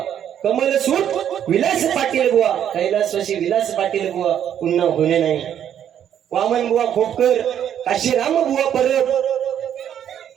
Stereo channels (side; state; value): left; quieter; 9.7 dB